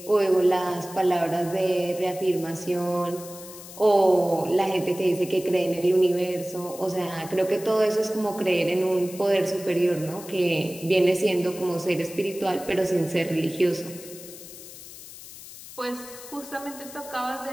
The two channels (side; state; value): left; noise; hiss, 15 dB below the sound